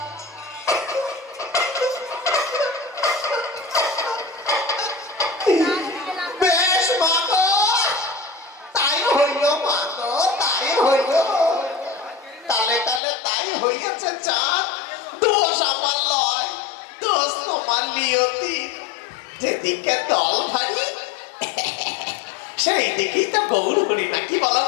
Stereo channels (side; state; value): right; drops out; at 13.0 s